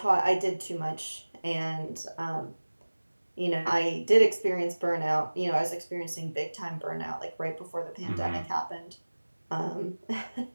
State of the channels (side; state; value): both; inverted; correlation -1.00